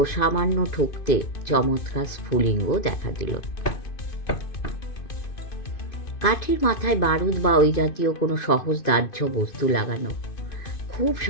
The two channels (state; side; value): late; right; 2.5 ms